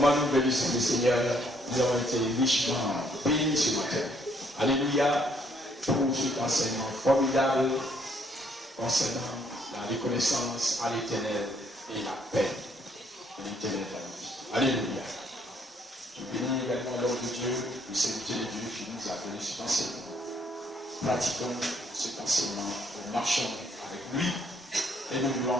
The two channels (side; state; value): both; normal; correlation 0.67